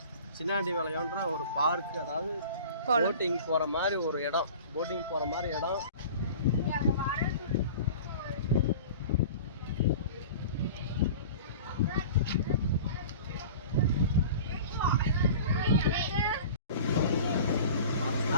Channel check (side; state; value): both; inverted; correlation -0.40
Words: சின்னாண்டி வளையம்ன்ற ஒரு பார்க்கு, அதாவது போட்டிங் போகிற மாதிரி ஒரு இடம்.